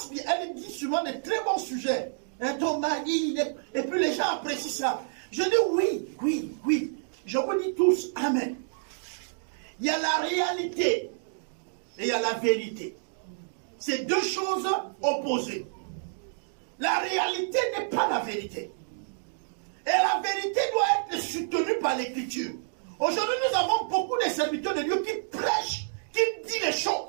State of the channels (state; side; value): silent; left; digital silence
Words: bien. Elle dit souvent de très bons sujets. Un ton mari, et puis les gens apprécient ça. Je dis oui. Je vous dis tous, amen. Il y a la réalité et il y a la vérité. C'est deux choses opposées. La réalité n'est pas la vérité. Et la vérité doit être soutenue par l'écriture. Aujourd'hui, nous avons beaucoup de serviteurs de Dieu qui prêchent, qui disent les